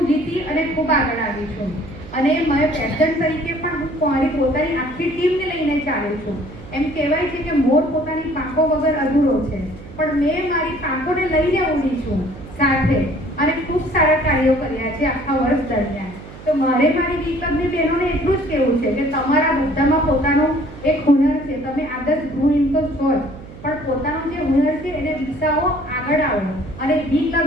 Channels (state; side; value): noise; right; hum, 16 dB below the sound